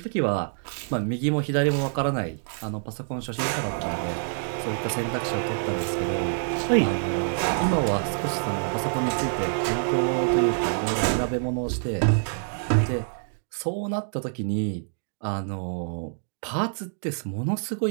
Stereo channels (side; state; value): left; silent; digital silence